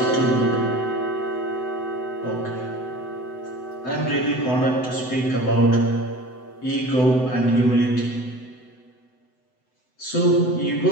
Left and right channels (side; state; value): right; late; 7.9 ms